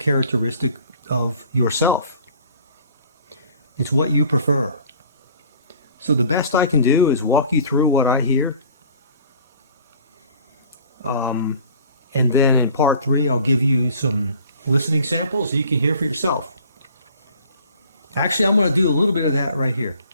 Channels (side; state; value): both; inverted; correlation -0.49